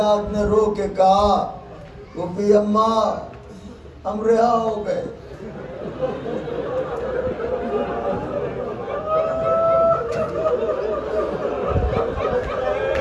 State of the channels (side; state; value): both; identical; correlation 1.00